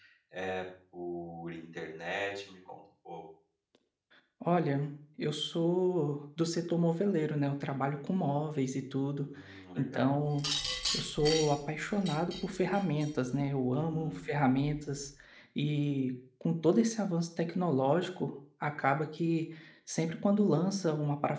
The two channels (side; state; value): both; identical; correlation 1.00